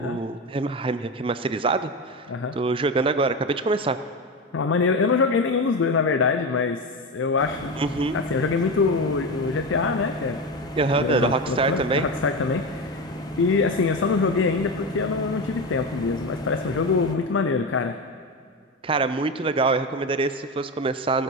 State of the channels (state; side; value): normal; both; correlation 0.19